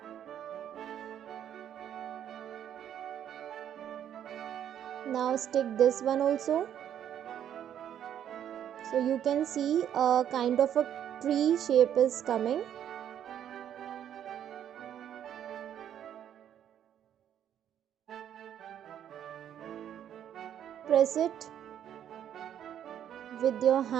Now stick this one also. So you can see a kind of a tree shape is coming. Press it with your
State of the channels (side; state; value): left; quieter; 10.0 dB